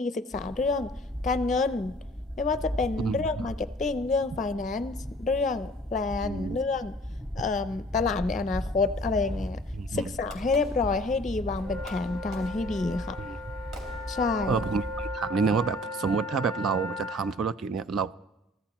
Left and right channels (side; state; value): both; normal; correlation 0.52